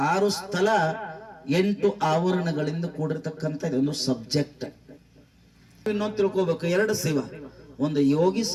6 ಸ್ಥಳ, 8 ಆವರಣಗಳಿಂದ ಕೂಡಿರ್ತಕ್ಕಂಥ ಇದೊಂದು ಸಬ್ಜೆಕ್ಟ್. ಇನ್ನೊಂದು ತಿಳ್ಕೋಬೇಕು, 2 ಶಿವ, ಒಂದು ಯೋಗಿ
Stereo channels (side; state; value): both; identical; correlation 1.00